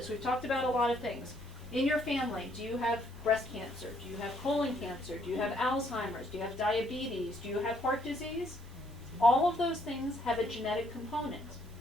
We've talked about a lot of things. In your family, do you have breast cancer? Do you have colon cancer? Do you have Alzheimer's? Do you have diabetes? Do you have heart disease? All of those things have a genetic component.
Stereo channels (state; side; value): normal; both; correlation 0.69